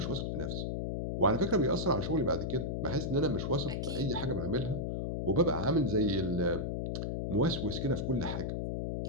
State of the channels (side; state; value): left; noise; hum, 2 dB below the sound